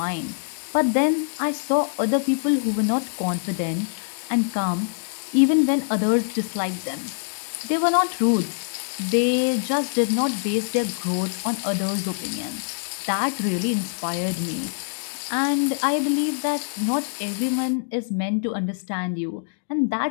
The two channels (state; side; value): silent; right; digital silence